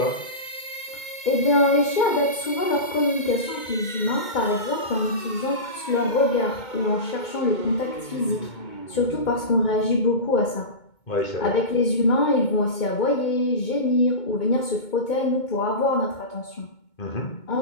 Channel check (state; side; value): late; right; 2.2 ms